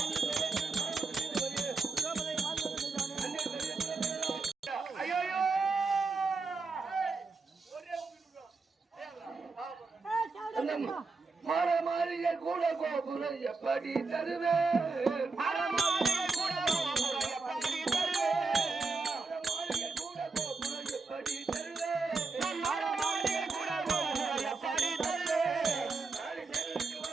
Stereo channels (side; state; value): left; quieter; 4.1 dB